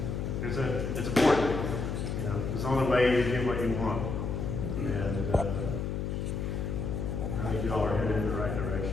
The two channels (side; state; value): left; noise; hum, 2 dB below the sound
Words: It's important, it's the only way you get what you want. And I think y'all are headed in the right